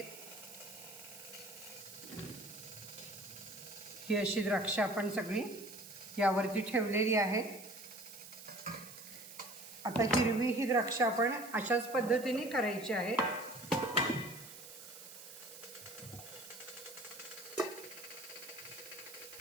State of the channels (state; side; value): noise; right; hiss, 14 dB below the sound